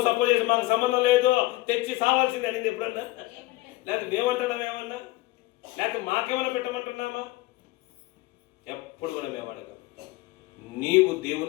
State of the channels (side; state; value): right; quieter; 19.4 dB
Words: సపోజ్ చేసి మాకు సంబంధం లేదు, తెచ్చి సావాల్సింది అనేది ఎప్పుడన్నా? లేకపోతే మేమంటున్నాం ఏమన్నా? లేకపోతే మాకేమైనా పెట్టమంటున్నామా? ఎప్పుడు కూడా మేము అడగం. నీవు